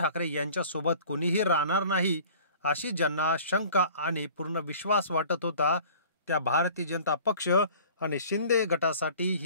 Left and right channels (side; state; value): both; inverted; correlation -0.47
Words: यांच्यासोबत कोणीही राहणार नाही अशी ज्यांना शंका आणि पूर्ण विश्वास वाटत होता, त्या भारतीय जनता पक्ष आणि शिंदे गटासाठी